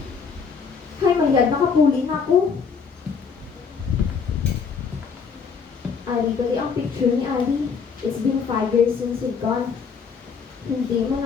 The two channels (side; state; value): right; quieter; 5.8 dB